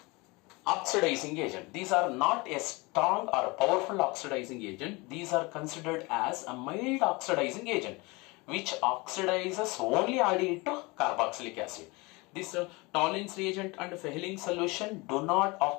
oxidizing agent. These are not a strong or a powerful oxidizing agent. These are considered as a mild oxidizing agent which oxidizes only aldehyde to carboxylic acid. This Tollens reagent and Fehling's solution do not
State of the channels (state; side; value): quieter; right; 25.2 dB